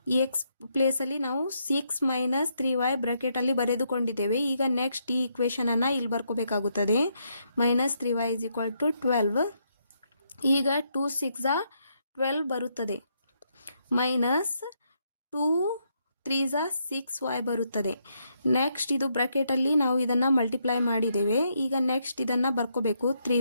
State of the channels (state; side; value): inverted; both; correlation -0.77